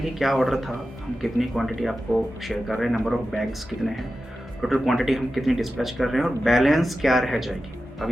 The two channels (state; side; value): normal; both; correlation 0.93